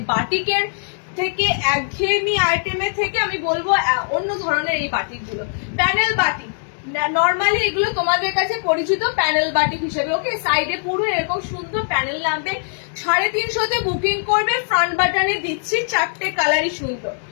বাটিকের থেকে, একঘেয়েমি আইটেমের থেকে আমি বলবো অন্য ধরনের এই বাটিক গুলো। প্যানেল বাটিক নর্মালি এগুলো তোমাদের কাছে পরিচিত প্যানেল বাটিক হিসেবে। ওকে, সাইডে পুরো এরকম সুন্দর প্যানেল নামবে, 350 বুকিং করবে। ফ্রন্ট বাটনে দিচ্ছি 4টে কালারই সুন্দর,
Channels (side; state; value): right; silent; digital silence